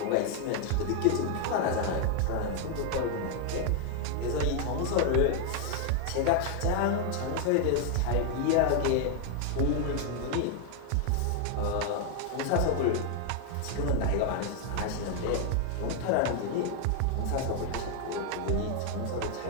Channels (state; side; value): different; both; correlation 0.00